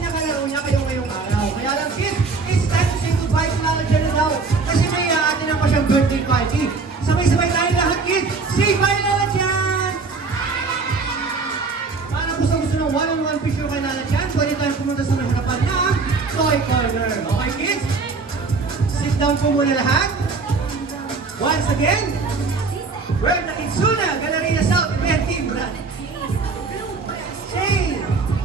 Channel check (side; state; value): left; quieter; 4.3 dB